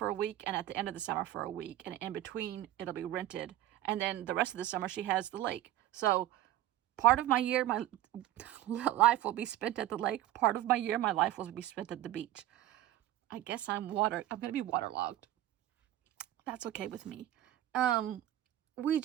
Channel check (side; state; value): left; quieter; 14.0 dB